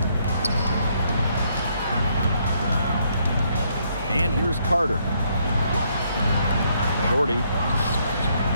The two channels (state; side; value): inverted; both; correlation -0.72